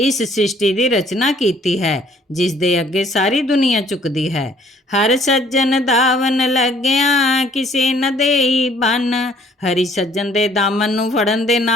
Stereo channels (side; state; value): both; normal; correlation 0.60